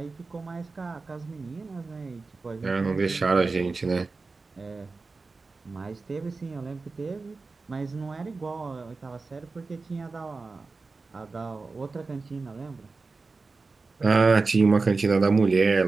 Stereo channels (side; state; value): left; quieter; 4.0 dB